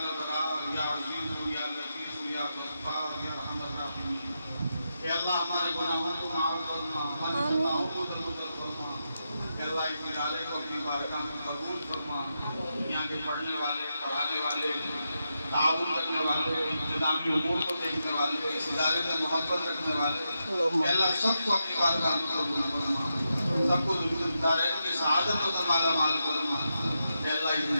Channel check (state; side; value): inverted; both; correlation -0.86